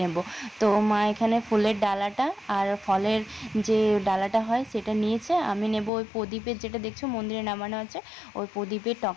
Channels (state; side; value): drops out; right; at 5.9 s